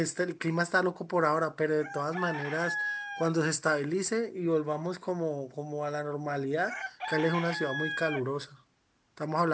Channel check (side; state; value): both; identical; correlation 1.00